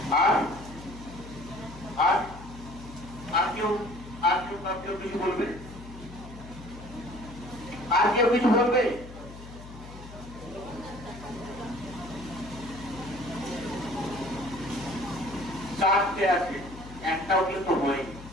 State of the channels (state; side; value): noise; left; hum, 15 dB below the sound